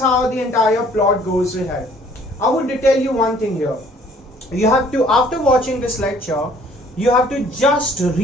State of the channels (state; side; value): normal; both; correlation 0.58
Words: the entire plot goes ahead. I would tell you one thing here. You have to, after watching this lecture, you have to just